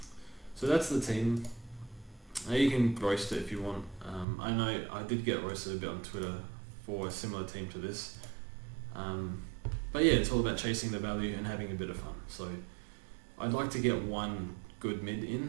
So that's the team. You can roast it if you want. I know I did get roasted a bit on Twitter for a similar team to this. But yeah, it's all about chasing the value and having a bit of fun. So I'd like to get one good mid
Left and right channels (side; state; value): left; drops out; at 4.2 s